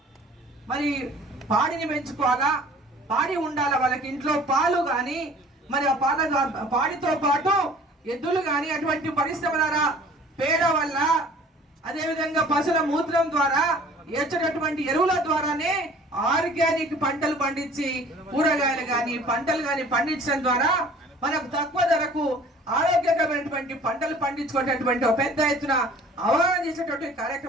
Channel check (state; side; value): normal; both; correlation 0.50